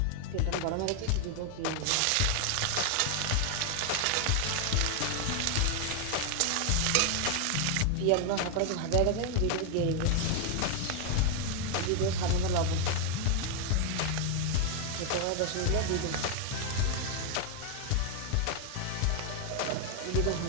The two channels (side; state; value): both; different; correlation 0.01